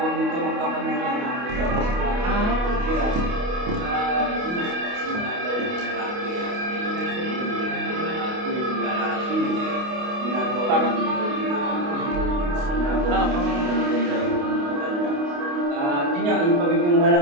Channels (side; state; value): left; late; 28 ms